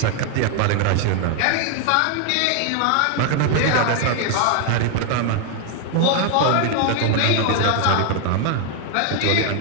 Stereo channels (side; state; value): both; different; correlation 0.01